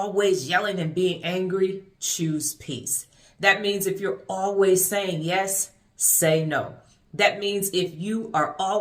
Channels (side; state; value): both; identical; correlation 1.00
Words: yelling and being angry, choose peace. That means if you're always saying yes, say no. That means if you are